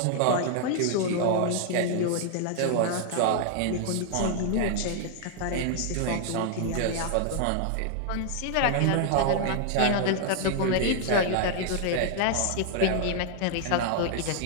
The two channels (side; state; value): both; different; correlation 0.00